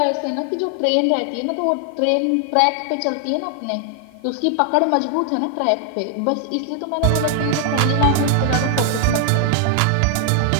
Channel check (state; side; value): different; both; correlation 0.00